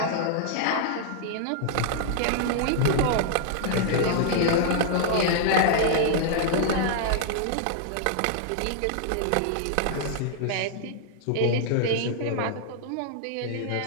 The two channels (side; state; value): both; different; correlation -0.01